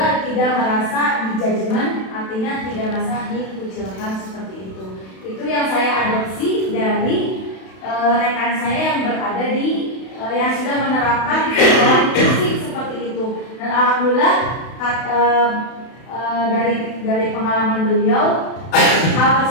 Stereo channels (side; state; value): right; late; 32 ms